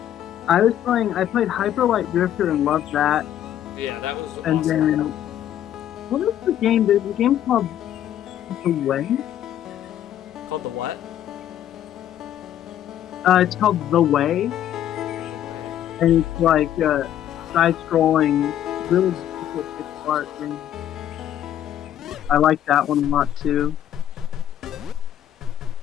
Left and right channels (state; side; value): quieter; right; 11.2 dB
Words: played Hyper Light Drifter and loved that. Yeah, that was And awesome. then what is the game? There's a game called The Way. Called the what? It's called The Way, and it's like side-scrolling, really difficult pixel art game. I like that one a lot too.